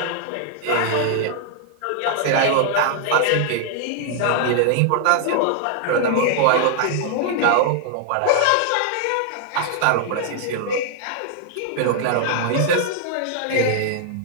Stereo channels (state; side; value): different; both; correlation 0.00